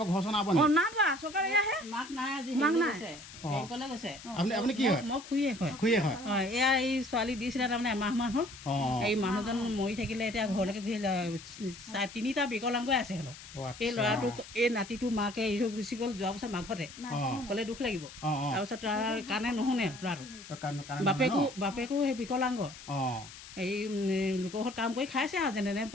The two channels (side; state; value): left; noise; hiss, 16 dB below the sound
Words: ঘৰ চৰ নাব নেকি না বা চৰকাৰে আহে মাক নাই আজি মাক নাই বেংকলৈ গৈছে আপুনি কি হয় মই খুৰীয়ে হয় খুৰীয়ে হয় এয়া এই ছোৱালী দিছিলে তাৰমানে এমাহমান হ'ল এই মানুহজন মৰি থাকিলে এতিয়া ঘৰলৈকে ঘূৰি 3টা বিকলাংগ আছে হেনো এই ল'ৰাটোক এই নাতিটো মাকে এৰি থৈ গুচি গ'ল যোৱা বছৰ মাঘতে ক'লে দুখ লাগিব তাৰপিছত তাৰ কাৰণে নুশুনে ল'ৰাটো বাপেকো সেই বিকলাংগ এই লোকৰ ঘৰত কাম কৰি খাইছে আৰু যেনে